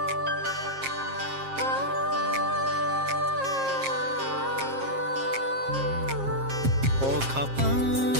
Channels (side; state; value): left; late; 7.5 ms